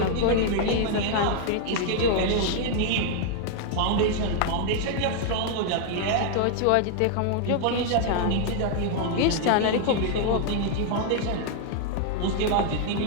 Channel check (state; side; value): different; both; correlation 0.00